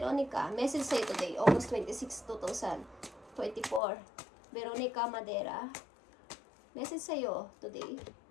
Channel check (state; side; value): drops out; right; at 3.8 s